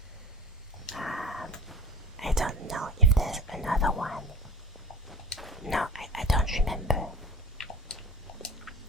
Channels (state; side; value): normal; both; correlation 0.37